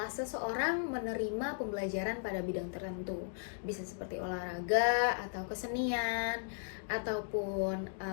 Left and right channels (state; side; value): silent; right; digital silence